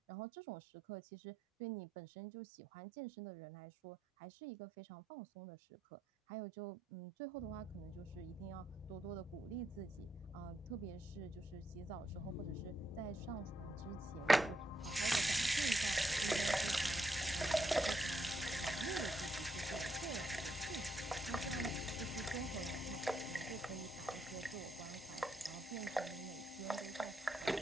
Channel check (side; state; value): both; normal; correlation 0.80